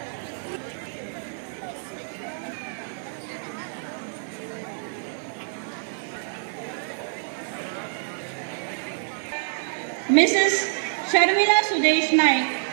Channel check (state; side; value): silent; left; 55 dB below the other